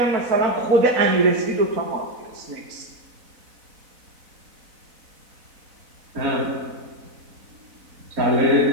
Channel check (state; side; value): late; left; 4.0 ms